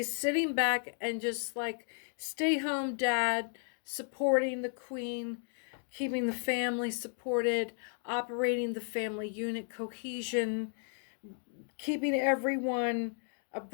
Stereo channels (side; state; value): right; silent; 55 dB below the other